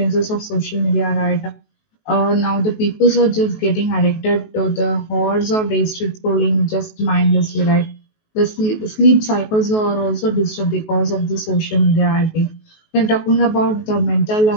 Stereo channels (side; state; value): right; late; 19 ms